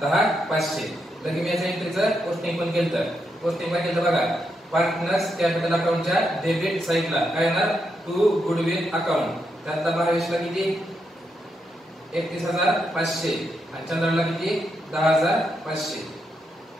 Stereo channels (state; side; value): normal; both; correlation 0.82